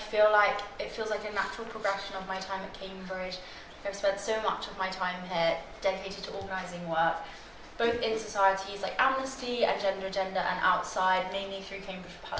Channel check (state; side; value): identical; both; correlation 1.00